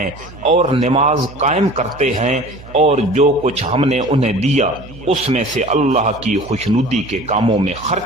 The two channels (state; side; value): noise; right; hum, 18 dB below the sound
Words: اور نماز قائم کرتے ہیں، اور جو کچھ ہم نے انہیں دیا اس میں سے اللہ کی خوشنودی کے کاموں میں